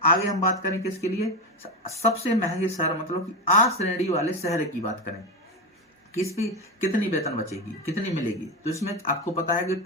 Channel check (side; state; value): both; normal; correlation 0.15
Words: आगे हम बात करें किसके लिए? सबसे महंगे शहर, मतलब कि आ श्रेणी वाले शहर की बात करें, किस पे कितनी वेतन बचेगी, कितनी मिलेगी? तो इसमें आपको पता है कि